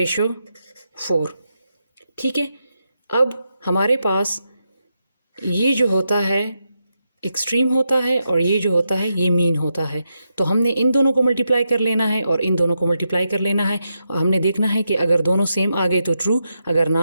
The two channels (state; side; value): inverted; both; correlation -0.85